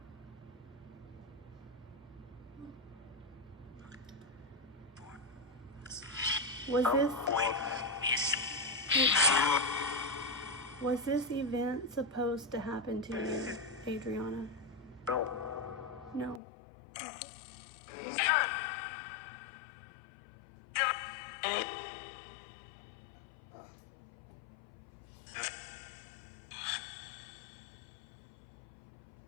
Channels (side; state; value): right; drops out; at 16.4 s